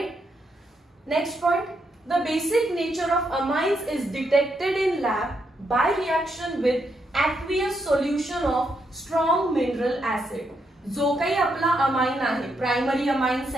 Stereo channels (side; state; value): both; normal; correlation 0.79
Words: Next point, the basic nature of amines is detected in lab by reaction with aqueous solution of strong mineral acid. जो काही आपला amine आहे, primary amine,